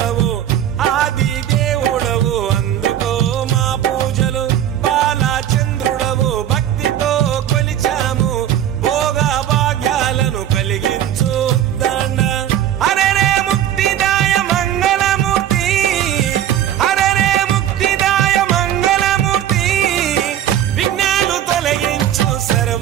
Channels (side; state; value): left; quieter; 11.1 dB